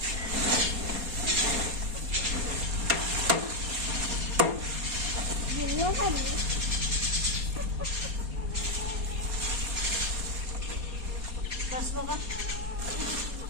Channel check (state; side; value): late; left; 4.2 ms